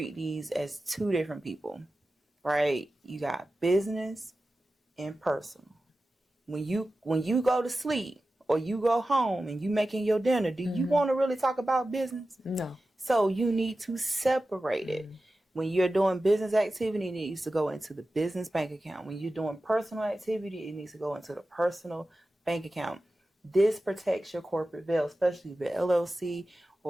these as two different people, right? You got business and personal. When you go to sleep or you go home and you making your dinner, do you want to really talk about business? No. So you need to separate it. When you're doing business activity, it needs to go into the business bank account. When you're doing personal activity, it needs to go into the personal bank account. This protects your corporate veil, especially if you're LLC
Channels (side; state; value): both; normal; correlation 0.94